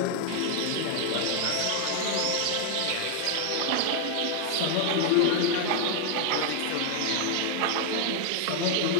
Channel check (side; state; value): both; different; correlation 0.00